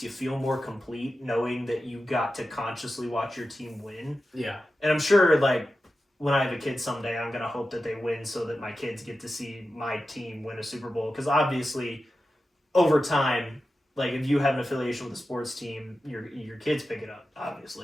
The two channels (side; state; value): both; normal; correlation 0.92